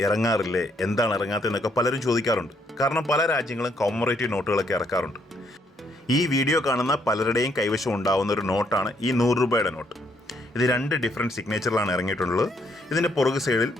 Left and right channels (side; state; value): both; normal; correlation 0.71